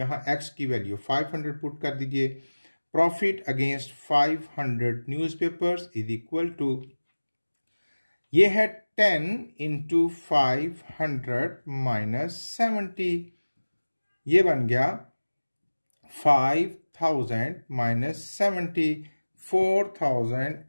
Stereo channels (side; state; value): both; inverted; correlation -1.00